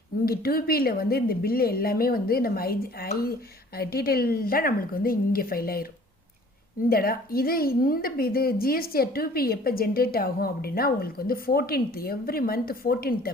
இங்கே 2Bயில் வந்து இந்த பில்லு எல்லாமே வந்து நம்ம டீட்டெயில்டாக நம்மளுக்கு வந்து இங்கே ஃபைல் ஆயிரும். இந்த இது GSTR 2B எப்போ ஜென்ரேட் ஆகும் அப்படின்னா, உங்களுக்கு வந்து 14th, எவ்ரி மந்த் 14th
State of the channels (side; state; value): both; normal; correlation 0.52